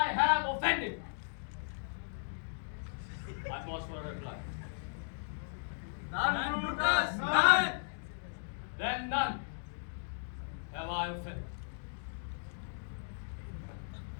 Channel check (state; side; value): silent; right; digital silence